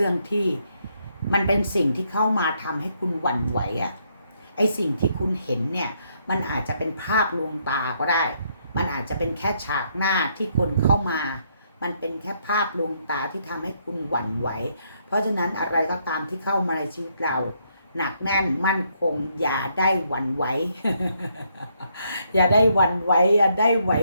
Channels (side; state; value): both; inverted; correlation -0.73